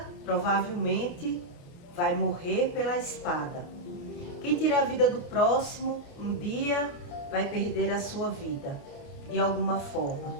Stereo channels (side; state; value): right; late; 28 ms